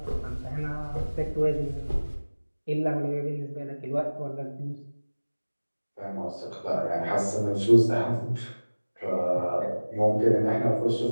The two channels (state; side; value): inverted; both; correlation -1.00